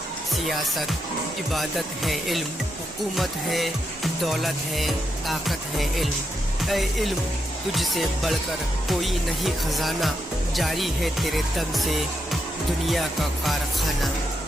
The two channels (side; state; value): both; normal; correlation 0.82